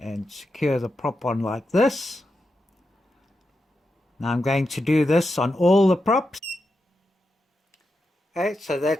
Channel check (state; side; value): normal; both; correlation 0.87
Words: secure the prop on like this. Now I'm going to do this on all the props. Okay, so